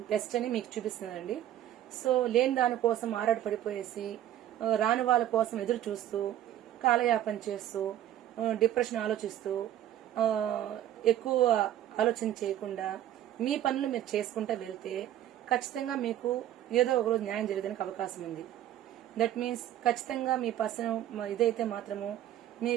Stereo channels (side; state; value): left; quieter; 12.1 dB